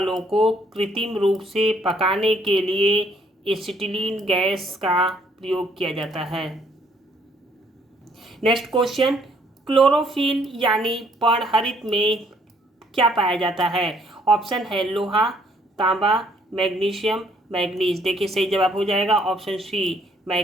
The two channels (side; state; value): both; normal; correlation 0.65